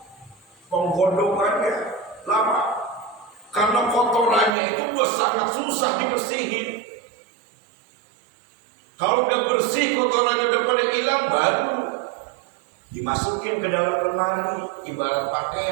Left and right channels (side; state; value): left; drops out; at 4.5 s